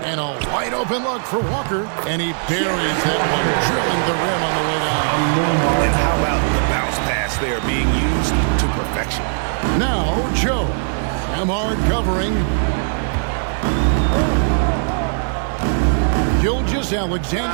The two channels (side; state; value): left; silent; digital silence